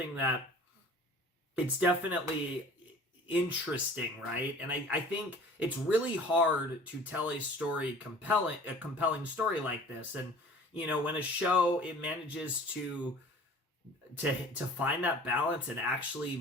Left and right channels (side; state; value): both; normal; correlation 0.46